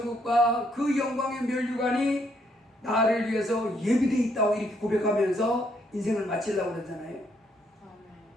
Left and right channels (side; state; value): both; normal; correlation 0.72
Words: 그 영광의 면류관이 나를 위해서 예비되어 있다고 이렇게 고백하면서 인생을 마치려고 그러잖아요.